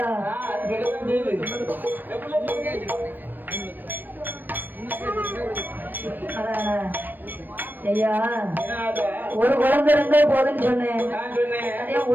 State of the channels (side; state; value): left; late; 0.091 ms